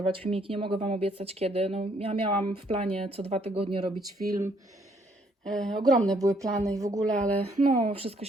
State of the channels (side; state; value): both; normal; correlation 0.67